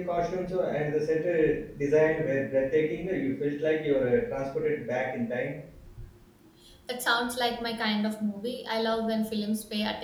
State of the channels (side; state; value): both; identical; correlation 1.00